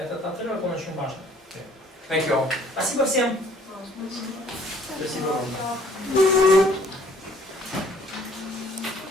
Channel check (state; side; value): normal; both; correlation 0.58